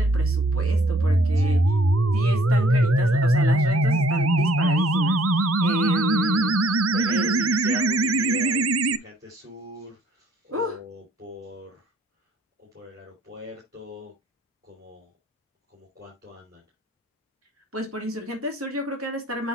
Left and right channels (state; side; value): normal; both; correlation 0.61